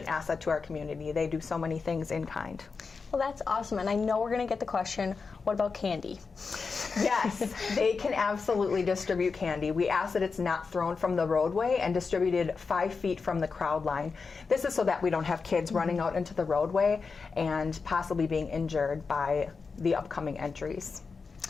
asset to our community. They do so many things in kind. Well, that's awesome, and I know we're going to get the question, what about candy? Yes, they can absolutely distribute candy. We ask that it's not thrown from the roadway and distributed 5 feet from the crowd line. This is so that we don't have kids running out into the roadway and possibly being injured by the upcoming entries.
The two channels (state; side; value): quieter; right; 4.9 dB